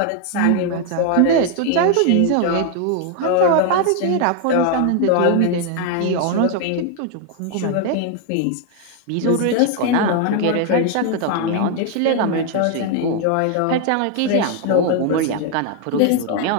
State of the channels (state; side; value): different; both; correlation 0.01